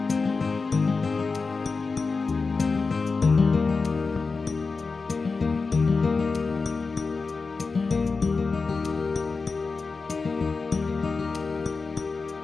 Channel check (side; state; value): right; quieter; 4.3 dB